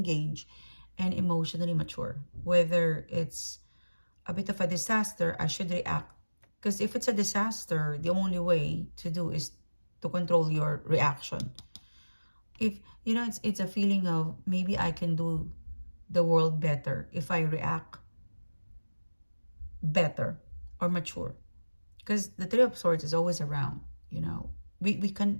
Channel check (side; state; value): both; inverted; correlation -1.00